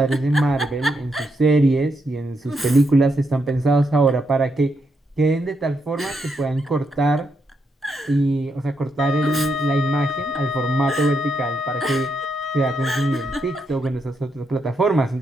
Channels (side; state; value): both; normal; correlation 0.80